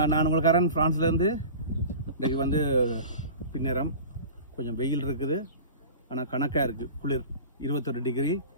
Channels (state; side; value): inverted; both; correlation -0.36